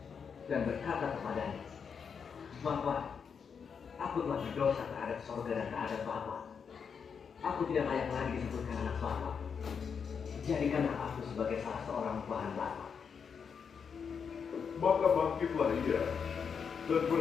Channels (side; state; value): right; quieter; 6.5 dB